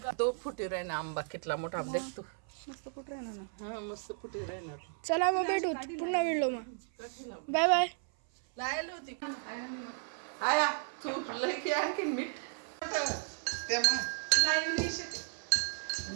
2 फुटी राही ना आंबा कितला मोठा देख तू मस्त कुठं राहिना ना हा मस्त फुटी राहणार चला मग भेटू पुन्हा व्हिडिओ मग बाय बाय लायला होती आया तू लय की आणखीन मीठ ते मग लाईव्ह नाही शेत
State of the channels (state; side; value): silent; left; 55 dB below the other